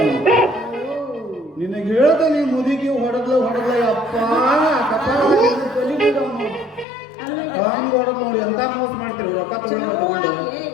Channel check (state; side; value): drops out; right; at 6.9 s